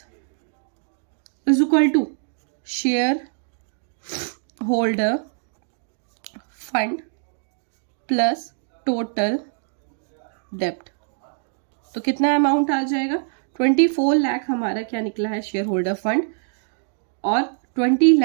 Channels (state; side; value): silent; left; digital silence